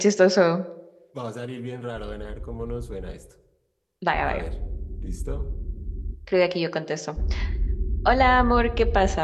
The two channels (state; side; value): identical; both; correlation 1.00